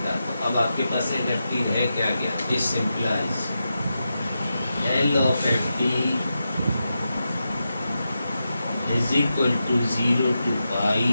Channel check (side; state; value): both; inverted; correlation -0.89